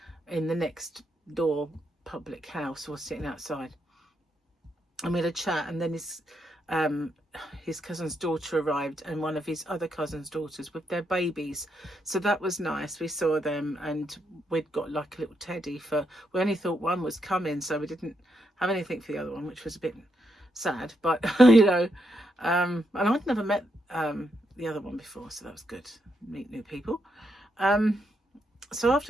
in the next door public house, or sitting outside, and we had a chat. And then his cousin's daughter arrived, and one of his other cousin's daughters with their babies, so that was nice. We saw them, and we'd got like a little teddy we only thought one was coming, so we didn't have anything for the other one, which was a bit sad, but you know, and I'd never met the other one before, so that was good. Meet new people. So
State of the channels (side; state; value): both; normal; correlation 0.80